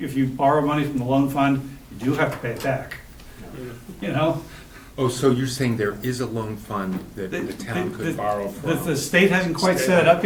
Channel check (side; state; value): both; identical; correlation 1.00